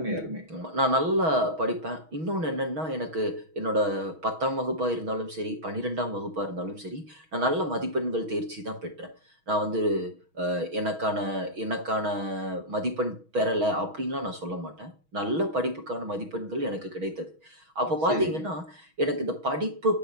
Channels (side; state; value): left; late; 6.3 ms